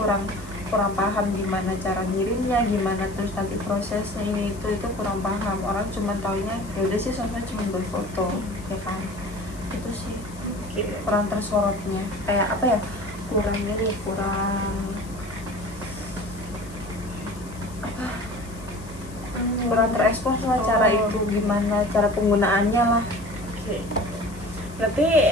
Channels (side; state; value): left; noise; hiss, 20 dB below the sound